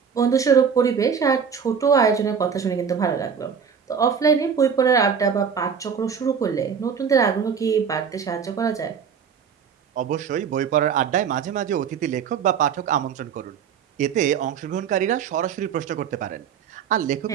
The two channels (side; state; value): left; quieter; 7.0 dB